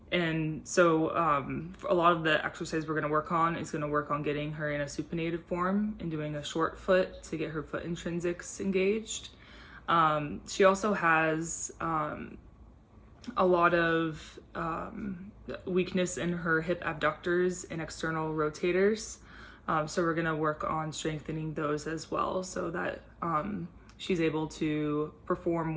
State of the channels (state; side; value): identical; both; correlation 1.00